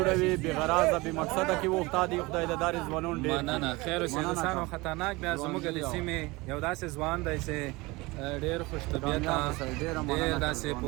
بې غرضه بې مقصده کې وخته دي. خدای د دارې ځوانان ډېر مننه خیر اوسئ. دوستانو خطرناک بیا زموږ د سیمې یو داسې ځوان دی چې ډېر خوش طبیعته ډېر داسې په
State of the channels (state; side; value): quieter; left; 23.0 dB